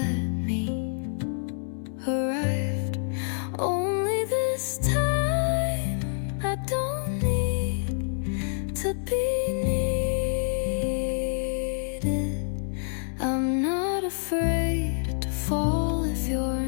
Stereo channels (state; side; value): silent; right; digital silence